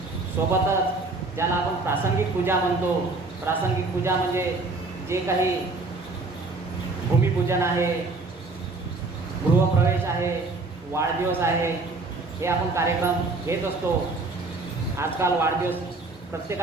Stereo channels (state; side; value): quieter; left; 3.5 dB